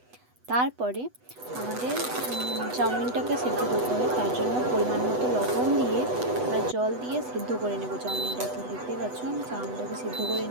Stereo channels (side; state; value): left; late; 8.1 ms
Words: তারপরে আমাদের চাউমিনটাকে সিদ্ধ করতে হবে। তার জন্য পরিমাণ মতো লবণ দিয়ে আর জল দিয়ে সিদ্ধ করে নেব চাউমিনটাকে। দেখতে পাচ্ছ আমি চাউমিনটাকে সিদ্ধ করে